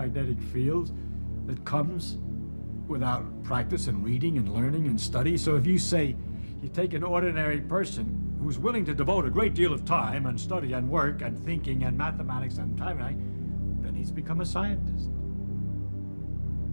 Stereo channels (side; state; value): both; inverted; correlation -1.00